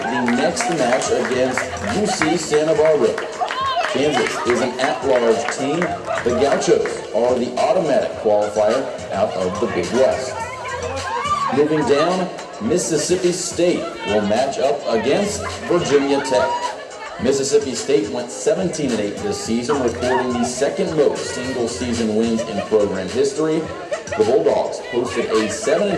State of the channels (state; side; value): identical; both; correlation 1.00